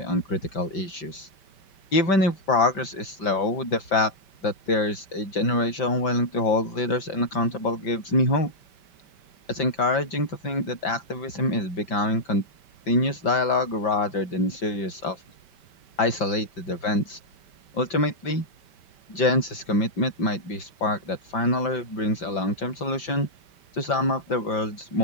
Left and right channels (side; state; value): right; late; 5.2 ms